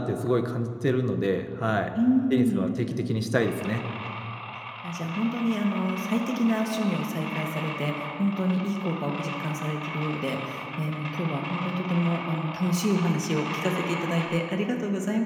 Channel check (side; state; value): both; identical; correlation 1.00